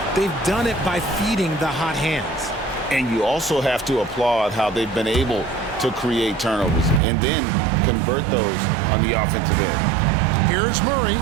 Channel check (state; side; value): drops out; left; at 7.0 s